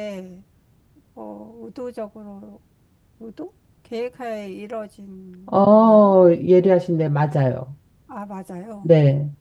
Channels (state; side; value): identical; both; correlation 1.00